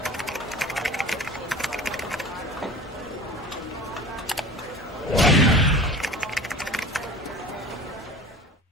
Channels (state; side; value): normal; both; correlation 0.38